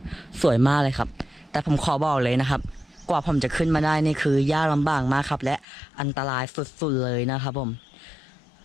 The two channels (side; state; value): right; drops out; at 5.7 s